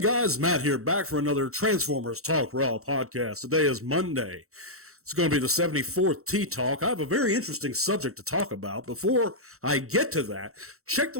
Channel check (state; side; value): late; left; 0.64 ms